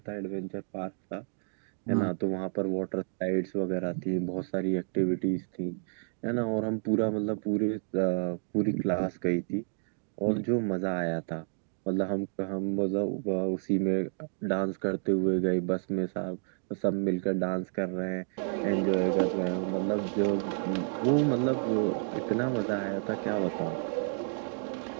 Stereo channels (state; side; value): silent; left; 57 dB below the other